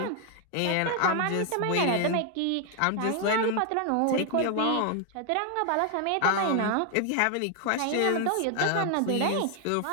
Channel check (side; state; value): both; different; correlation 0.00